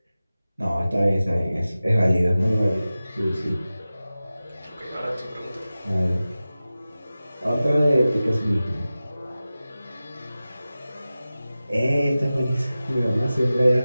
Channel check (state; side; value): inverted; both; correlation -0.96